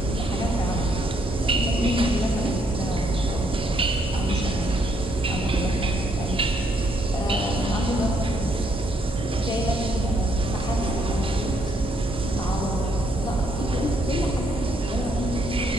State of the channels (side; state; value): both; normal; correlation 0.72